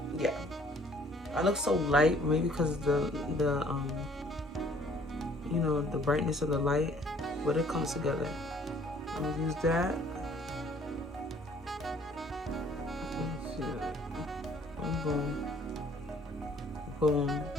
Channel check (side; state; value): both; normal; correlation 0.58